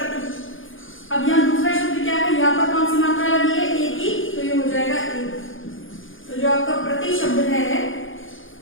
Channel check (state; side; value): late; right; 0.58 ms